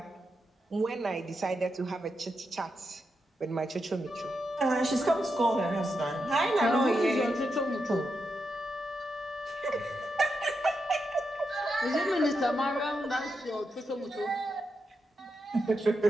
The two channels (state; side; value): normal; both; correlation 0.85